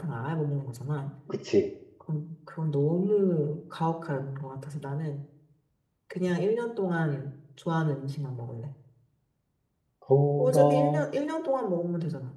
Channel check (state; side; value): identical; both; correlation 1.00